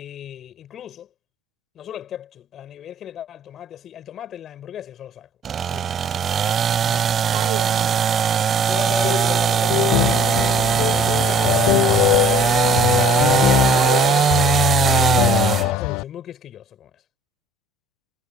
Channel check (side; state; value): both; normal; correlation 0.53